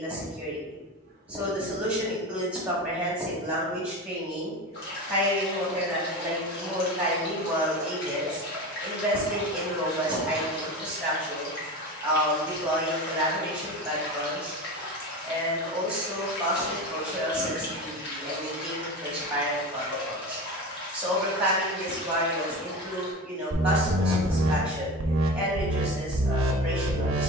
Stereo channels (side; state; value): both; normal; correlation 0.28